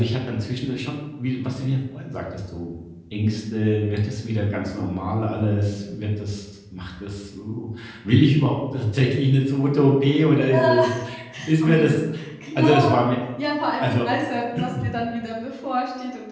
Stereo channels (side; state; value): both; identical; correlation 1.00